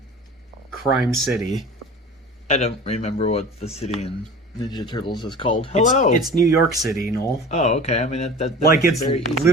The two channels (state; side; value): normal; both; correlation 0.39